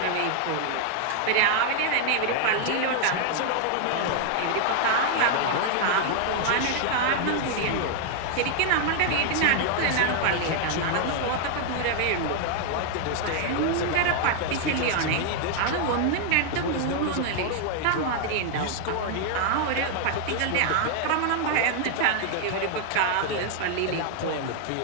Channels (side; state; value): both; different; correlation 0.00